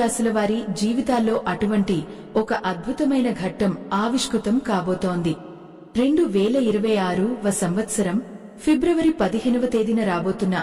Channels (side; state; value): both; identical; correlation 1.00